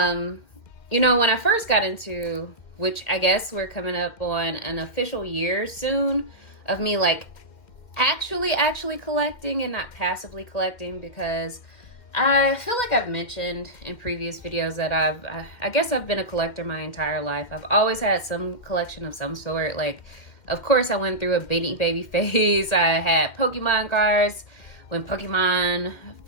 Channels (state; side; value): late; right; 2.1 ms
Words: know, when I first got into, which I guess we're coming up on an official year soon of me like actually collecting and not passively collecting, because I feel like I've mentioned in previous videos that I guess I've been a collector my entire life. I've always had some collection of some sort. Like, of course, I went through a Beanie Baby phase. I had Pokemon cards when Pokemon